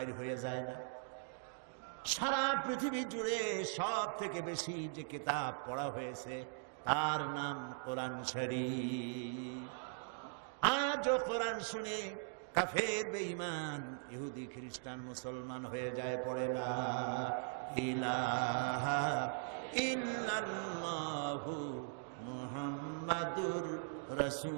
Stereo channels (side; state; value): left; silent; digital silence